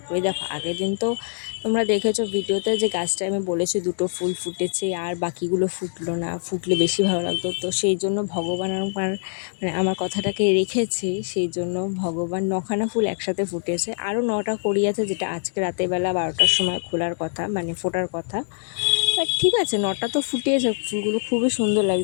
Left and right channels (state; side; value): silent; right; digital silence